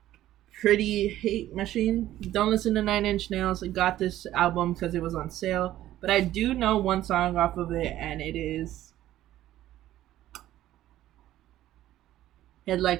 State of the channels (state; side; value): quieter; left; 13.8 dB